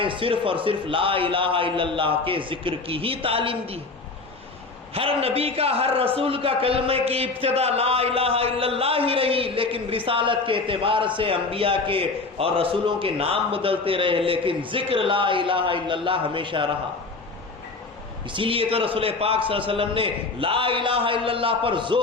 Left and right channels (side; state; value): right; quieter; 3.8 dB